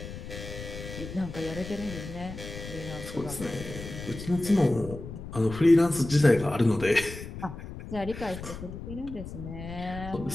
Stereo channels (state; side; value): noise; left; rumble, 10 dB below the sound